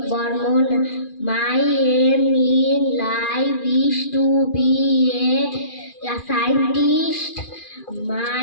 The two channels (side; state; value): right; late; 2.4 ms